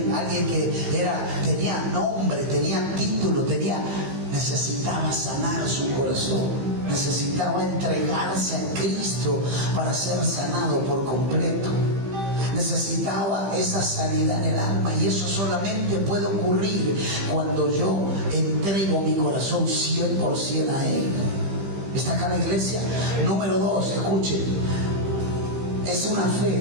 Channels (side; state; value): left; late; 15 ms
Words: que tenía nombre, tenía título, necesitaba sanar su corazón, necesitaba entregarse a Cristo para ser sanado por completo. Necesitaba esa sanidad en el alma, y eso solamente puede ocurrir cuando yo entrego mi corazón 100% a Él. ¿Está acá la iglesia? Número 2, escuchen, es una